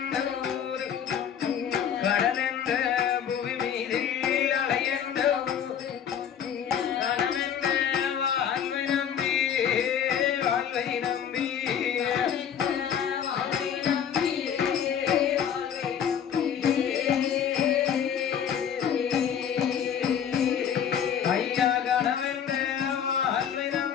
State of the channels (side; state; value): right; quieter; 8.5 dB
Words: ஊர் கடல் என்ற பூமி மீது அலையென்ற கடமென்ற வாழ்வை நம்பி வாழ்வை நம்பி ஐயா கடமென்ற வாழ்வை